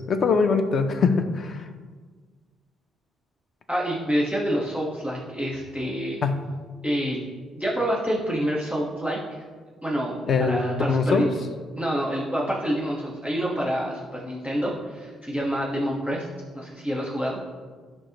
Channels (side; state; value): both; normal; correlation 0.79